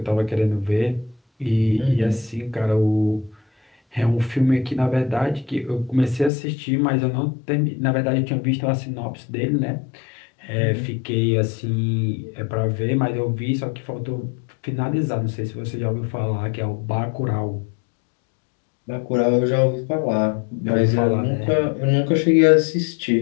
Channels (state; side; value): drops out; right; at 6.3 s